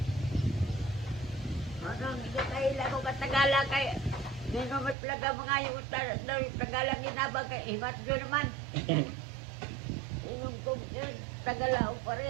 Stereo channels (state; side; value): drops out; left; at 5.0 s